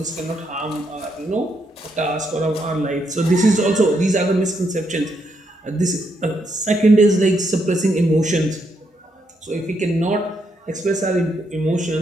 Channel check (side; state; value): both; normal; correlation 0.78